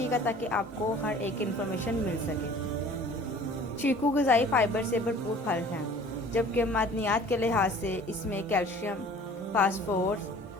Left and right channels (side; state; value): both; normal; correlation 0.48